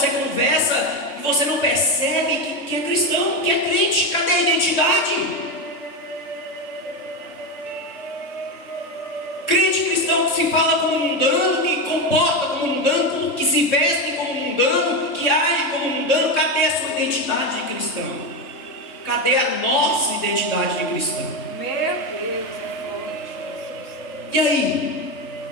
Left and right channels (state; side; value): late; right; 3.7 ms